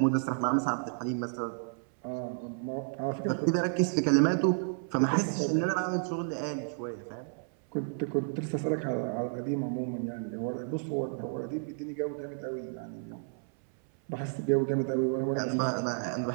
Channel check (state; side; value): silent; left; 57 dB below the other